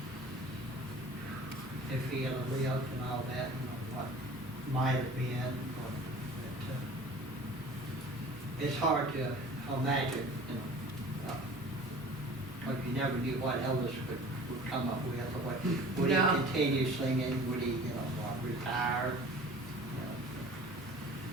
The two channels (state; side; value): normal; both; correlation 0.44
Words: if he had lived and all that, you know, what might have been. But, it's hard to imagine, you know, because you never knew what Elvis would come up with, or what, would he continue singing, would he, you know, retire?